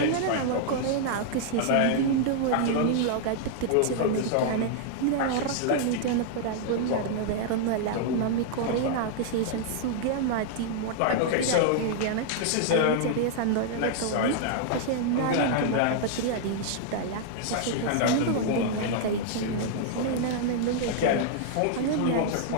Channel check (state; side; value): different; both; correlation -0.01